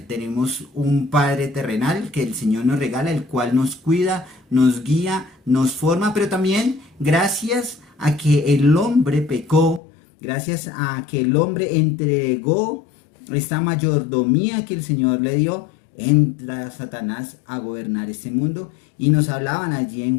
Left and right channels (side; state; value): right; drops out; at 9.8 s